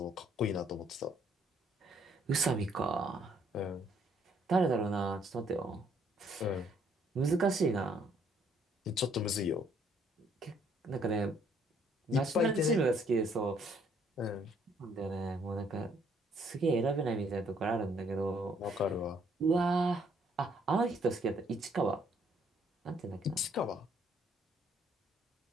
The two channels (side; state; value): both; normal; correlation 0.66